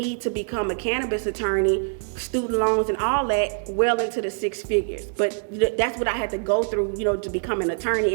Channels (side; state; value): left; silent; 62 dB below the other